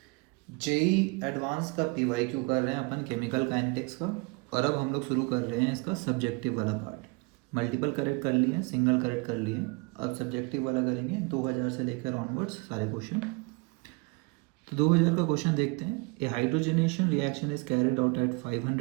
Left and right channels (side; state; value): left; quieter; 28.9 dB